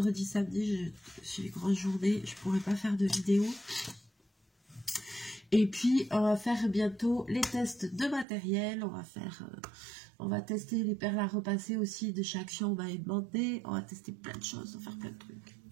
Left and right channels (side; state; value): left; drops out; at 8.2 s